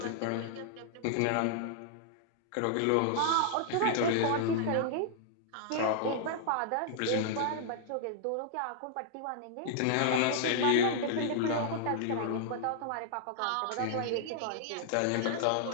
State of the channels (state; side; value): different; both; correlation -0.01